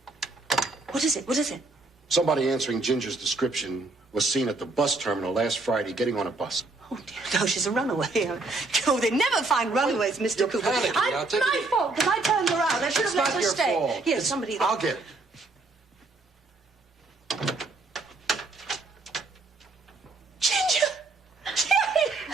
What is it? What is it? Somebody answering Ginger's description was seen at the bus terminal last Friday getting on a bus. Oh, dear. No, she's a runaway. Oh, they never find runaways, Mr. You're Cooper. panicking. I'll take my it. fault, because I turned her out. I should have let her It's stay. not your fault. Here, somebody... I'll get it. Ginger!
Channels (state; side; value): quieter; left; 3.4 dB